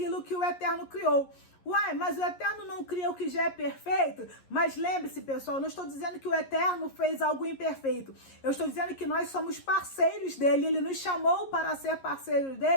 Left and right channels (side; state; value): right; late; 11 ms